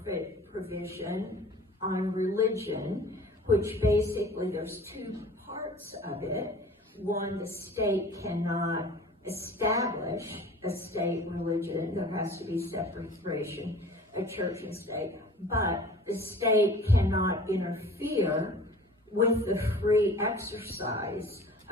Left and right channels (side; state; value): both; normal; correlation 0.45